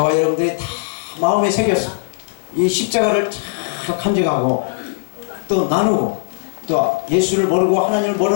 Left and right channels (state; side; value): silent; right; digital silence